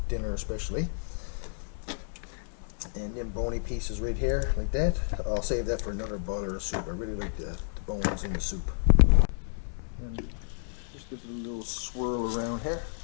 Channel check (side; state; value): right; silent; 55 dB below the other